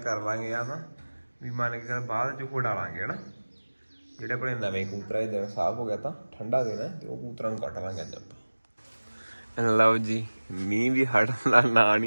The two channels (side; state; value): both; inverted; correlation -1.00